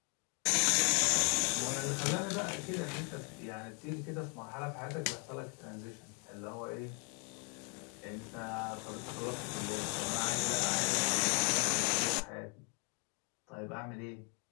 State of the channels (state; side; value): quieter; right; 35.5 dB